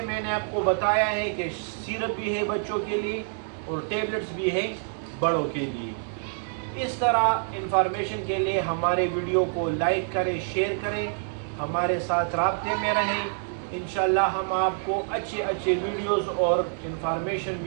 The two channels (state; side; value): silent; left; digital silence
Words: میں نے آپ کو بتایا ہے کہ سیرپ بھی ہے بچوں کے لیے اور ٹیبلٹس بھی ہے بڑوں کے لیے۔ اس طرح انفارمیشن کے لیے ہمارے ویڈیو کو لائک کریں، شیئر کریں، ہمارے ساتھ رابطے میں رہیں۔ انشاءاللہ ہم آپ کو اچھے ویڈیوز اور انفارمیشن